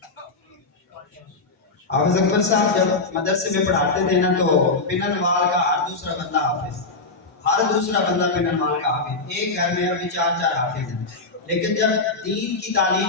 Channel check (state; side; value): quieter; right; 3.6 dB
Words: حافظ اکبر صاحب جب مدرسے میں پڑھاتے تھے نا تو پنن وال کا ہر دوسرا بندہ حافظ، ہر دوسرا بندہ پنن وال کا حافظ، ایک گھر میں ابھی 4 حافظ ہیں۔ لیکن جب دین کی